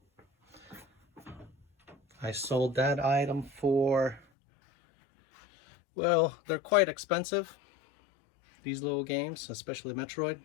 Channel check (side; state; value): right; drops out; at 4.2 s